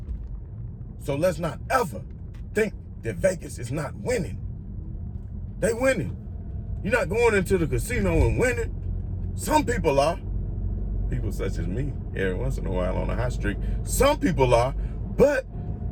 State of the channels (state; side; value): identical; both; correlation 1.00